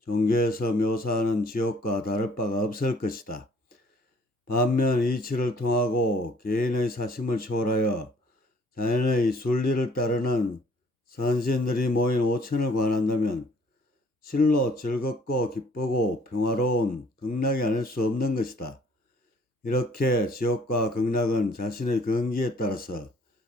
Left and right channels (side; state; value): both; normal; correlation 0.59